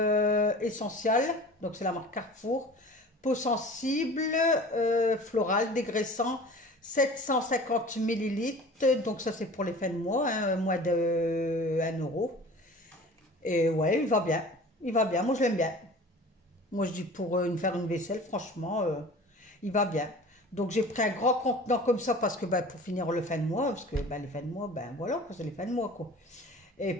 Essential, donc c'est la marque Carrefour, peau sensible, floral, dégraissant, 750 millilitres, donc ça c'est pour les fins de mois, hein, moins de 1 €. Et ouais, il va bien, moi je l'aime bien. Moi je dis pour faire une vaisselle, franchement, il va bien. Donc j'ai pris un grand contenant comme ça parce que ben, pour finir le fin de mois, parce que ben, les fins de mois, ben voilà, c'est les fins de mois quoi. Et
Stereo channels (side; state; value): both; normal; correlation 0.41